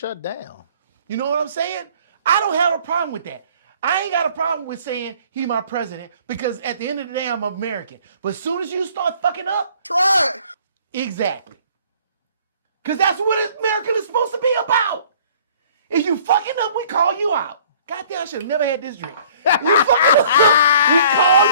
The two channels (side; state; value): both; inverted; correlation -0.55